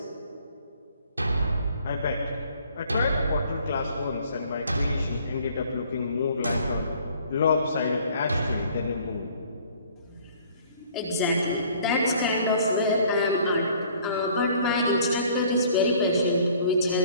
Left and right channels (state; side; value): inverted; both; correlation -0.56